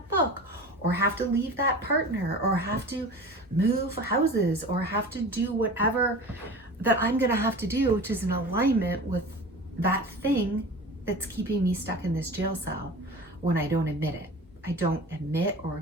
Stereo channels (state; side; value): normal; both; correlation 0.36